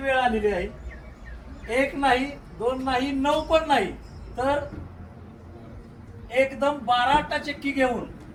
आलेली आहे. 1 नाही 2 नाही 9 पण नाही तर एकदम 12 आटाचक्की घेऊन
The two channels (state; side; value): identical; both; correlation 1.00